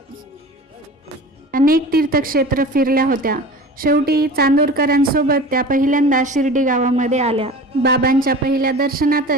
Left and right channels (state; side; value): normal; both; correlation 0.37